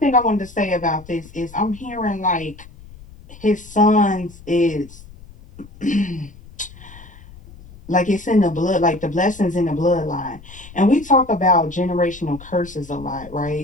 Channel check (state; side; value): noise; left; rumble, 20 dB below the sound